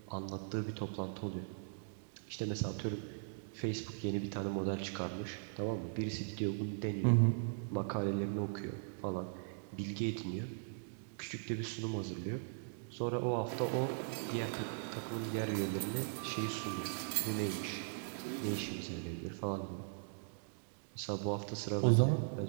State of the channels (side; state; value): left; silent; digital silence